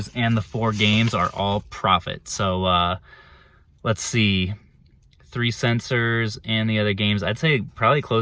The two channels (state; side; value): identical; both; correlation 1.00